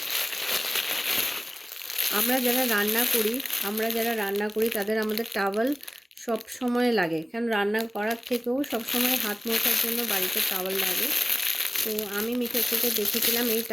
আমরা যারা রান্না করি তাদের আমাদের টাওয়াল সব সময় লাগে, কারণ রান্না করার থেকেও সব সময় হাত মোছার জন্য বাড়িতে টাওয়াল লাগে। তো আমি মিশো থেকে দেখেছিলাম, এই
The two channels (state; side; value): normal; both; correlation 0.97